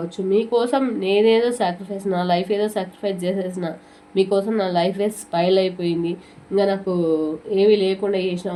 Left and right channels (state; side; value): identical; both; correlation 1.00